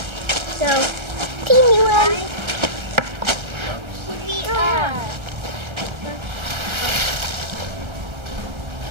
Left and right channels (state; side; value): late; left; 1.3 ms